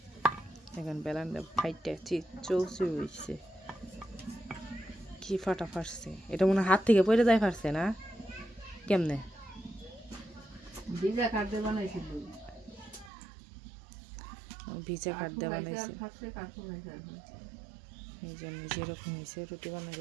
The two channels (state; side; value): drops out; left; at 13.1 s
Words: এখন বেলানটা ফাইটটা চৌচুর হয়েছে কি ফাটা ফাটছে এটা মনে হাত থেকে পড়ে যায় ফাটছে না কেমনে ভিজা কাঠ দিয়ে বানাইছিল ভিজা কাঠ দিয়ে বানাইছে এই জন্য যেরকম হয়েছে রুটি